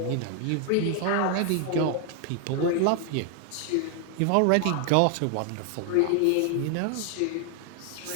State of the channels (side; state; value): both; different; correlation 0.00